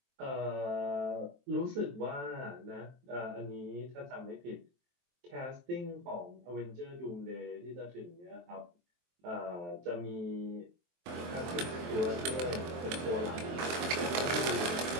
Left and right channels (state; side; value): late; left; 23 ms